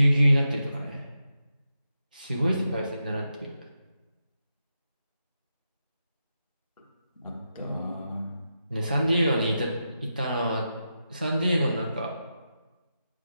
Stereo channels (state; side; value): inverted; both; correlation -0.88